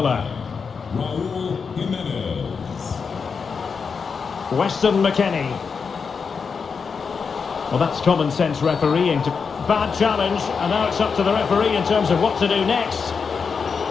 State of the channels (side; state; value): right; quieter; 5.6 dB